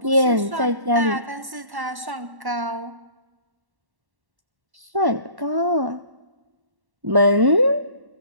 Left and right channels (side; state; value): left; late; 1.1 ms